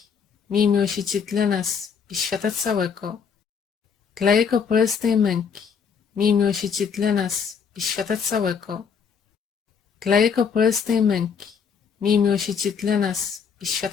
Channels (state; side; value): quieter; right; 6.4 dB